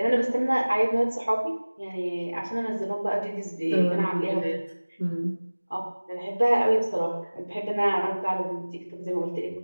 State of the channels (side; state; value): both; inverted; correlation -1.00